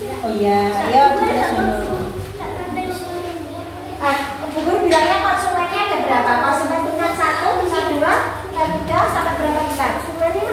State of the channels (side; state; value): both; identical; correlation 1.00